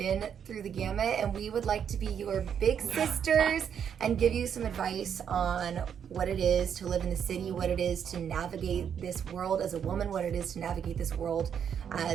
through the gamut, and we would like to be your big sisters and give you some advice on what it is to live in the city, what it is to navigate this world as a woman, what it is to navigate this world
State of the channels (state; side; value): quieter; left; 8.1 dB